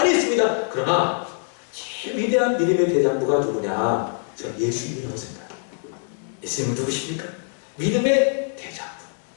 있습니다. 그러나 제일 위대한 믿음의 대장부가 누구냐? 저는 예수님이라고 생각해요. 예수님은 누구십니까? 믿음의 대장부.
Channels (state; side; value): silent; right; 63 dB below the other